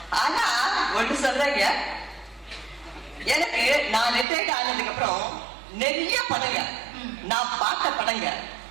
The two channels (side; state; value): left; drops out; at 4.2 s